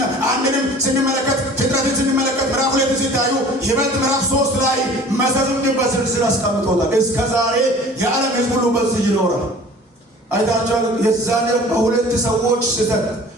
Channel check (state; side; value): normal; both; correlation 0.46